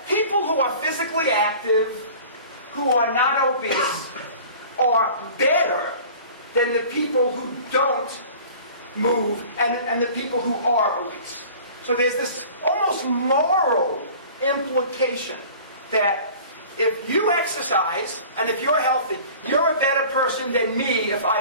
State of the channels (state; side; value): inverted; both; correlation -0.44